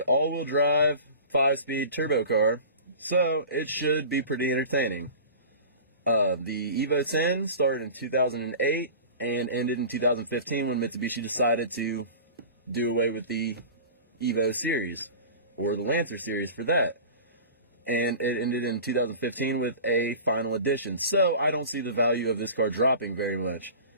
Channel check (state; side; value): inverted; both; correlation -0.38